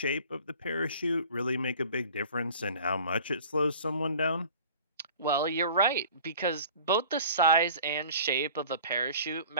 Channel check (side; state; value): both; inverted; correlation -0.45